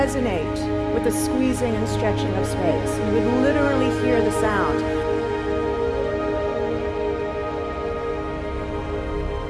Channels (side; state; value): both; identical; correlation 1.00